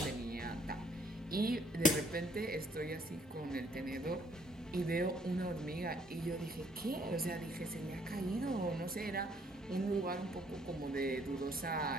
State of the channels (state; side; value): normal; both; correlation 0.65